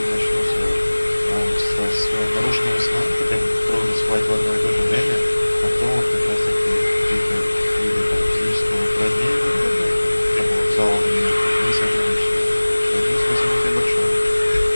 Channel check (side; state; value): both; inverted; correlation -1.00